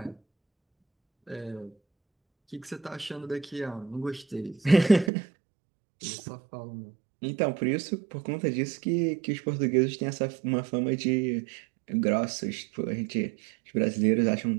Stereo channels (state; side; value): drops out; left; at 5.1 s